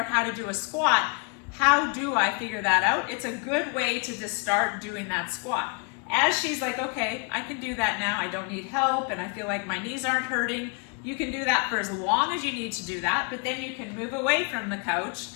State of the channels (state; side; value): quieter; right; 34.6 dB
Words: how to do a squat. How do I figure that out? It's a good way to just start doing that squat. As she's like, okay, I can do that now, I don't need help, and I feel like my knees aren't hurting, you can do that for as long as you need to do that, but then you can move away from the couch,